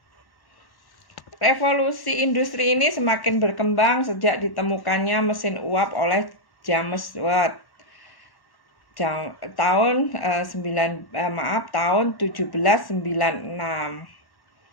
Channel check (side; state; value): right; late; 1.1 ms